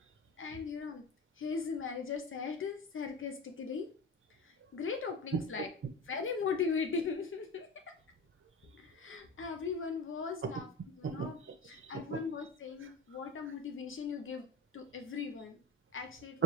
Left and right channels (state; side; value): normal; both; correlation 0.28